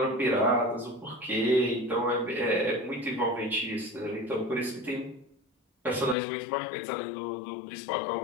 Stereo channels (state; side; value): drops out; right; at 6.2 s